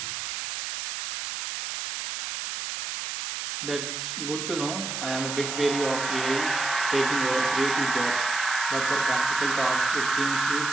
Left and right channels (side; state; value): right; noise; hiss, 5 dB below the sound